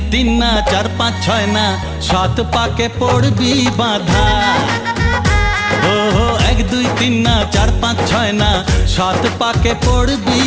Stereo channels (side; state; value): both; identical; correlation 1.00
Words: তিন না, চার পাঁচ ছয় না, সাত পাকে পড়বি বাঁধা। ও এক দুই তিন না, চার পাঁচ ছয় না, সাত পাকে পড়বি